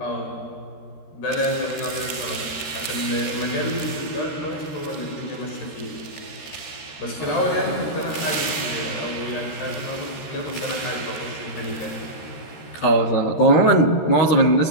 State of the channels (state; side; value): late; right; 13 ms